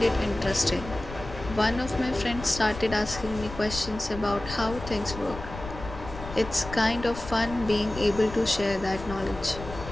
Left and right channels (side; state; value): left; noise; rumble, 12 dB below the sound